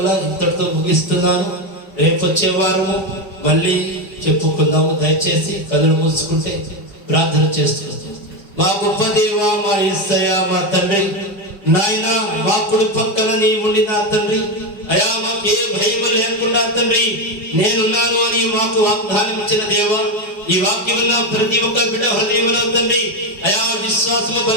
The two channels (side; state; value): right; late; 4.8 ms